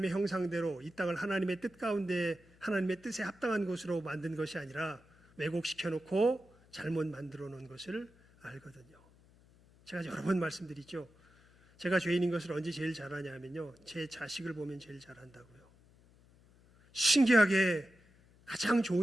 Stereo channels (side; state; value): left; noise; hum, 28 dB below the sound